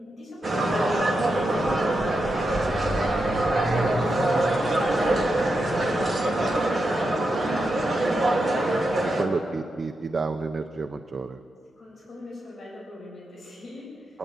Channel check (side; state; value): both; normal; correlation 0.87